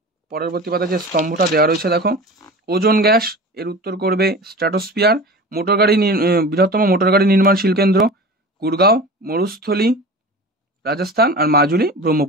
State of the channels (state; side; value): normal; both; correlation 0.35